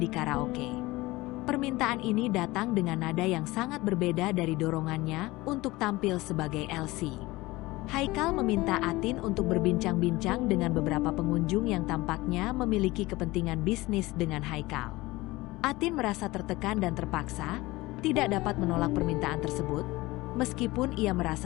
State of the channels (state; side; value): quieter; right; 20.3 dB